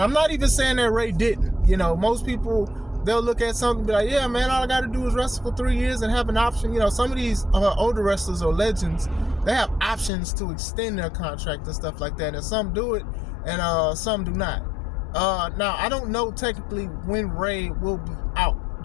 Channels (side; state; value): right; drops out; at 10.1 s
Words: I'm not even saying that Ray didn't. Most people, they'll look at something and be like, yeah, man, all I got to do is wrestle for 3 years and have an option. Some of these older wrestlers or legends, they have options to extend their contract and stuff like that. And some do it and some do not. Now, I don't know technically when Ray will be out.